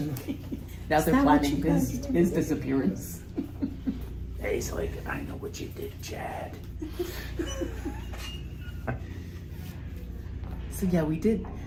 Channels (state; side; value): identical; both; correlation 1.00